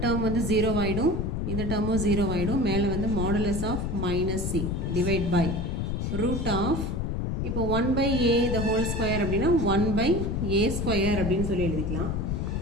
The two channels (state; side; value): noise; left; rumble, 1 dB below the sound